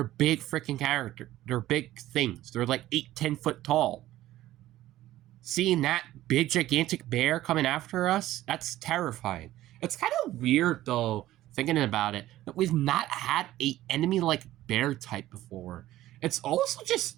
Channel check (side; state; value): left; quieter; 14.8 dB